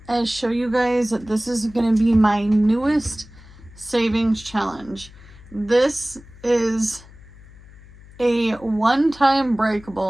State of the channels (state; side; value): noise; left; hum, 21 dB below the sound